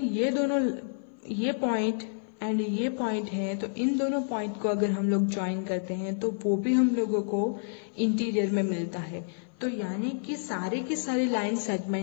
ये दोनों, ये पॉइंट एंड ये पॉइंट है, तो इन दोनों पॉइंट को अगर हम लोग ज्वाइन करते हैं तो वो भी हम लोगों को इंटीरियर में मिलता है। तो यानी कि सारे के सारे लाइन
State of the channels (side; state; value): right; silent; 56 dB below the other